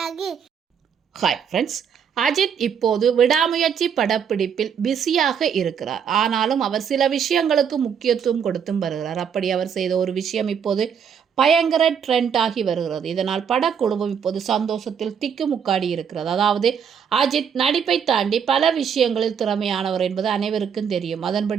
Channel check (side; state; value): left; quieter; 7.5 dB